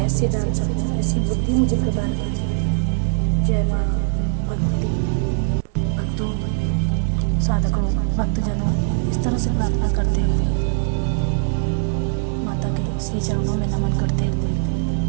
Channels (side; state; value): left; silent; 62 dB below the other